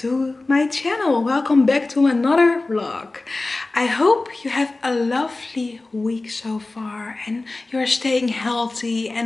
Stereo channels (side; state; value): right; quieter; 3.2 dB